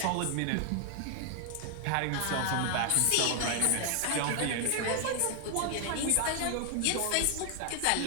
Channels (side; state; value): both; different; correlation 0.00